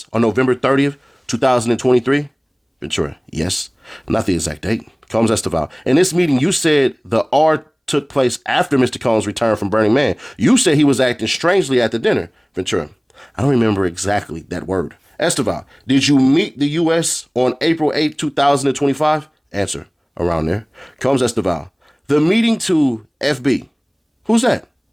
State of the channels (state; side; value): identical; both; correlation 1.00